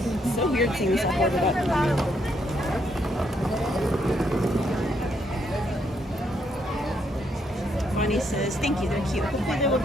It's so weird seeing stuff ordered up. Bonnie says, thank you, they're cute. Hopefully they will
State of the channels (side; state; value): both; normal; correlation 0.74